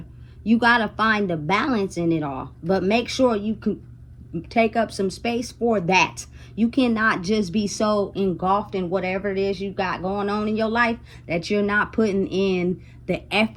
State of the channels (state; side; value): identical; both; correlation 1.00